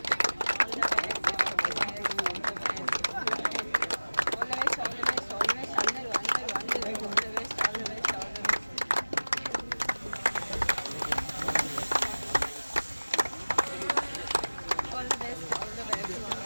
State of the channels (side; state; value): both; inverted; correlation -1.00